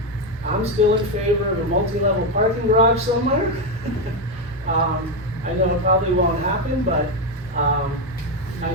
still in favor of a multi-level parking garage somewhere. I know it probably won't happen, but I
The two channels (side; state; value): both; normal; correlation 0.08